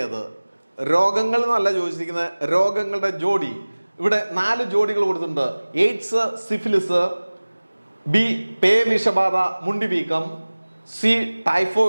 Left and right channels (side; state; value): both; inverted; correlation -1.00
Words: ഏത്? രോഗങ്ങൾ എന്നല്ല ചോദിച്ചിരിക്കുന്നത്, രോഗങ്ങളുടെ ജോഡി. ഇവിടെ 4 ജോഡികൾ കൊടുത്തിട്ടുണ്ട്. എയ്ഡ്സ്, സിഫിലിസ്, ബി പേ വിഷബാധ മുണ്ടിവീക്കം, സി